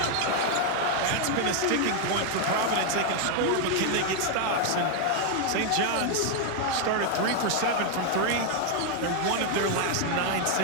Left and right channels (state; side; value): different; both; correlation 0.00